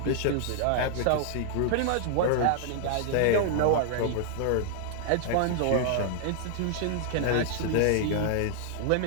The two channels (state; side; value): different; both; correlation 0.00